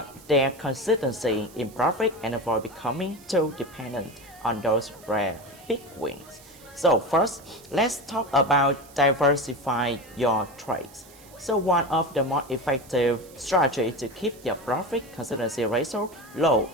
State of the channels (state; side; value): noise; right; hiss, 23 dB below the sound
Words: their consistency in profit and avoid becoming too dependent on those rare big wins. So first, let's talk about diversify your trades. So one of the most effective strategies to keep your profit consistency ratio low